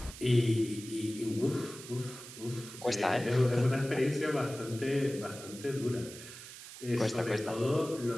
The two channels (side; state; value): right; noise; hiss, 14 dB below the sound